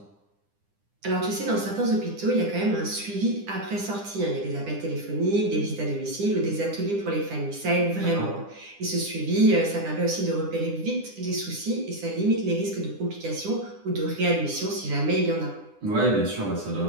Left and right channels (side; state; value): left; late; 9.9 ms